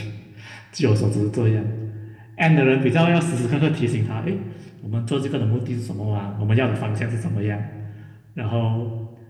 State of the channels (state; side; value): identical; both; correlation 1.00